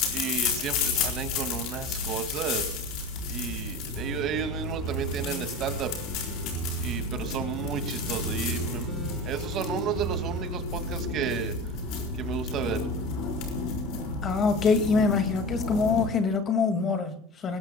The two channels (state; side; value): normal; both; correlation 0.32